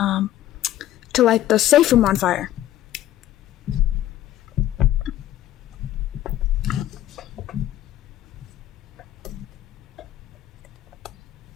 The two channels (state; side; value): quieter; right; 13.4 dB